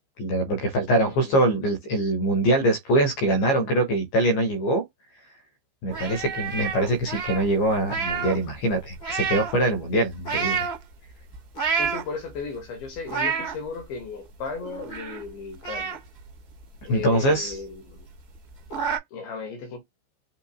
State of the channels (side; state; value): right; late; 15 ms